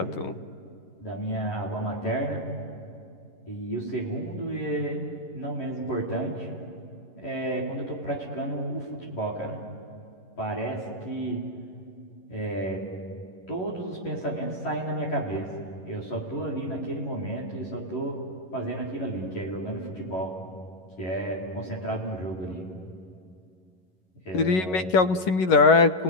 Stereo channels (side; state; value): right; late; 11 ms